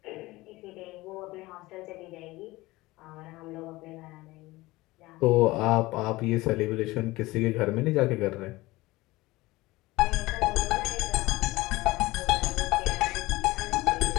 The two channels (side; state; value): right; quieter; 20.0 dB